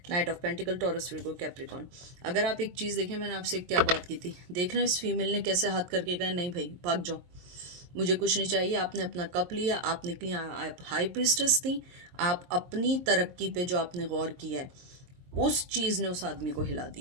knight of pentacle, Taurus Virgo Capricorn. अगर आप एक चीज़ देखें, मैंने आपसे क्या बात की थी, देख रहे हैं इस फीमेल ने कैसे हाथ करके कहा नहीं भाई भाग जाओ, मुझे कुछ नहीं चाहिए। आपने अपना कप लिया, आप निकली, आप हाई प्रीस्टेस थी, आप अपनी तरक्की पे जो आपने गौर किया है उस चीज़ ने उस आदमी को हिला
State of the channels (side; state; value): left; late; 22 ms